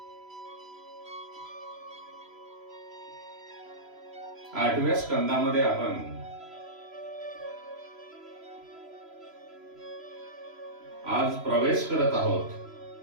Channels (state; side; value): late; left; 3.0 ms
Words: 8व्या स्कंदामध्ये आपण आज प्रवेश करत आहोत.